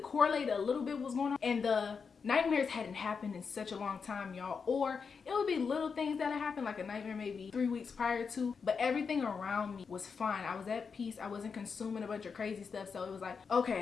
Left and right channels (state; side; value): quieter; right; 5.6 dB